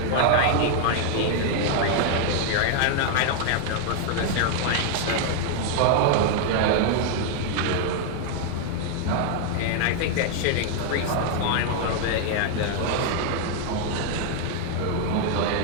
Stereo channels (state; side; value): different; both; correlation 0.00